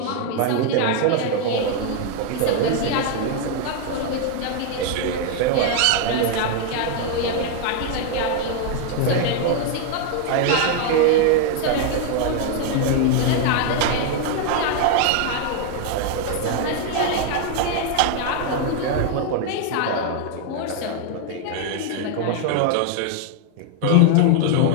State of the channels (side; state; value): both; different; correlation 0.00